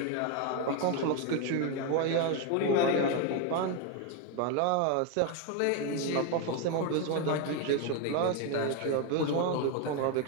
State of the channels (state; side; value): different; both; correlation 0.02